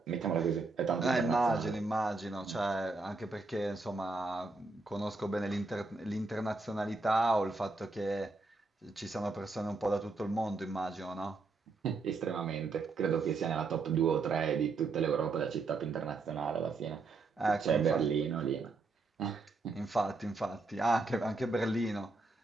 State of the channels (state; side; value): quieter; left; 3.7 dB